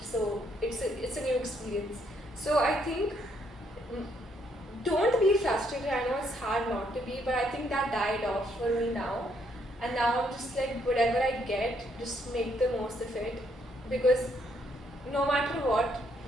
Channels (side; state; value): both; normal; correlation 0.72